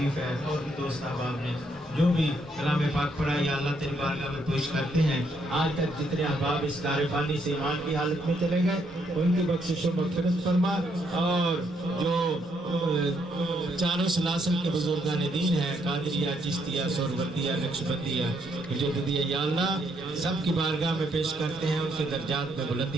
ہے۔ اور دوست احباب نے جو بھی کلام پاک پڑھا یا اللہ تیری بارگاہ میں پیش کرتے ہیں، آج تک جتنے احباب اس دار فانی سے ایمان کی حالت میں چلے گئے ان کی بخشش و مغفرت فرما، اور جو چاروں سلاسل کے بزرگان دین ہیں، قادریہ، چشتیہ، سہروردیہ، نقشبندیہ، مجددیہ، یا اللہ سب کی بارگاہ میں پیش کرتے ہیں، ان کے درجات میں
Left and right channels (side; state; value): both; normal; correlation 0.73